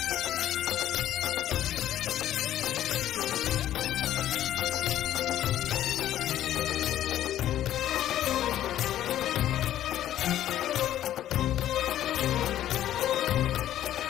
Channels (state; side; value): quieter; right; 12.3 dB